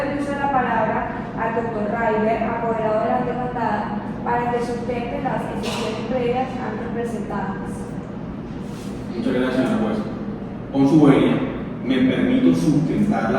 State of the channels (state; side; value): identical; both; correlation 1.00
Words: el uso de la palabra al doctor Raiber, apoderado de la demandada, para que sustente las excepciones previas antes presentadas. Muchas gracias, señora juez. Con su venia, me permito sustentar